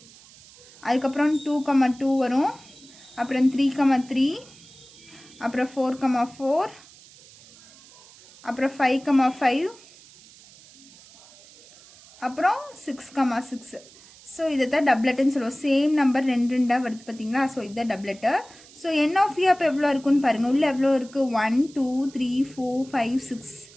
அதுக்கப்புறம் 2 2 வரும், அப்புறம் 3 3, அப்புறம் 4 4, அப்புறம் 5 5, அப்புறம் 6 6. ஸோ இதை தான் டப்லெட்டுன்னு சொல்லுவோம். சேம் நம்பர் ரெண்டாக வருது பார்த்தீங்களா. ஸோ இதுதான் டப்லெட்டு. ஸோ என் ஆஃப் ஏ அப்போ எவ்வளோ இருக்குன்னு பாருங்கள். உள்ளே எவ்வளோ இருக்குது, 1 2 3 4 5 6.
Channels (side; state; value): right; noise; hiss, 23 dB below the sound